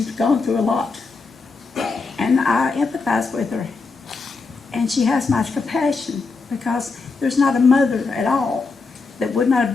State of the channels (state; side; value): quieter; right; 4.2 dB